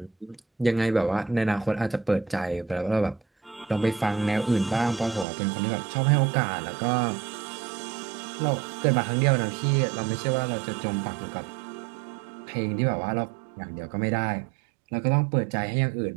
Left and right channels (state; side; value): drops out; left; at 5.2 s